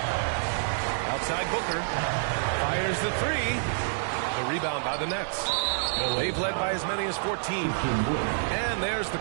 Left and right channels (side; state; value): left; silent; digital silence